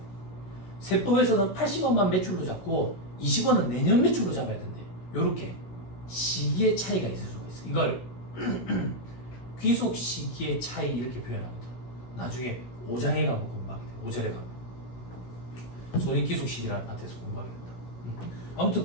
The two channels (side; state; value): right; late; 16 ms